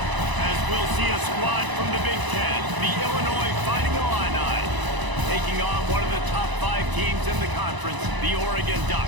As we'll see a squad from the Big Ten, the Illinois Fighting Illini, taking on one of the top 5 teams in the conference, the Oregon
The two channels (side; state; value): left; late; 1.0 ms